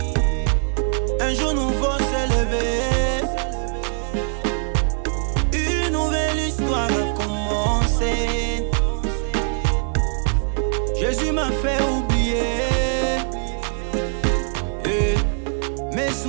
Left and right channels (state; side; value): silent; left; 64 dB below the other